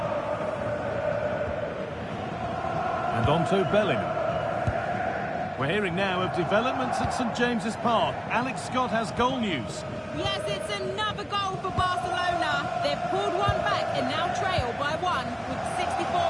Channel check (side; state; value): both; identical; correlation 1.00